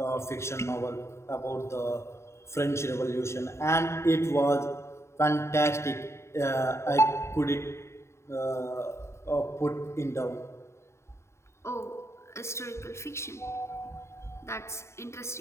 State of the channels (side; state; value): right; late; 0.13 ms